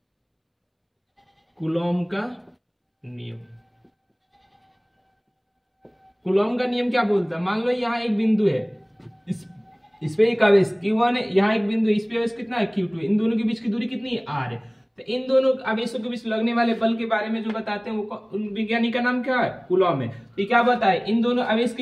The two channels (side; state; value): both; identical; correlation 1.00